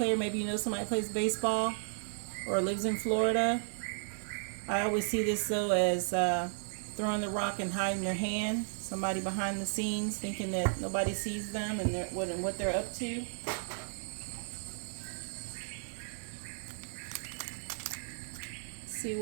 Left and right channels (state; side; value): silent; left; digital silence